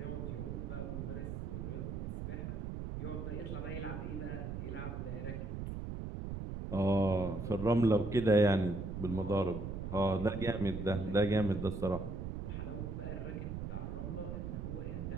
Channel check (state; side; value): noise; right; rumble, 5 dB below the sound